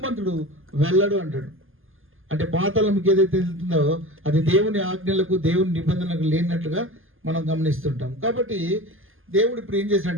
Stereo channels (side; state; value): left; late; 0.59 ms